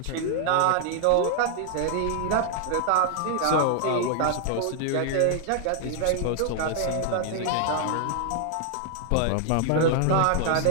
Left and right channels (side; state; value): both; different; correlation 0.00